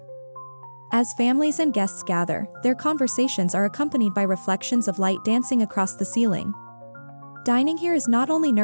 As families and guests gather, their conversations are accompanied by reflections of light dancing across the ceiling. Dining here is not only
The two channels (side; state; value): both; inverted; correlation -1.00